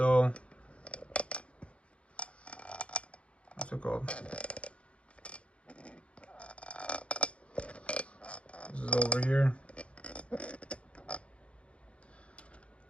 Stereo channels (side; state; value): right; late; 0.061 ms